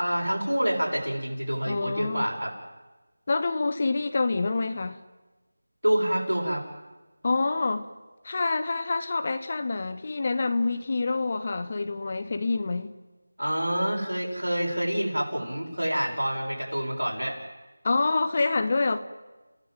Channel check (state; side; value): inverted; both; correlation -0.97